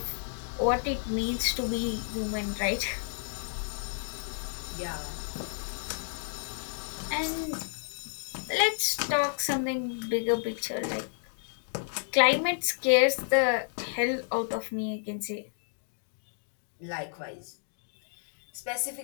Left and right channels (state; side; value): silent; right; digital silence